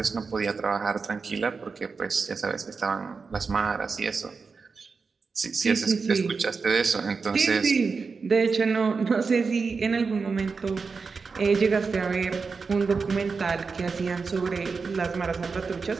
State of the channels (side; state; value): left; quieter; 4.8 dB